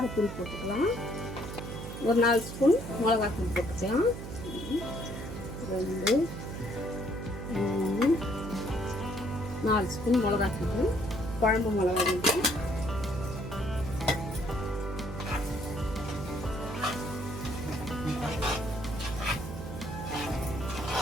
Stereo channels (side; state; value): right; noise; hum, 8 dB below the sound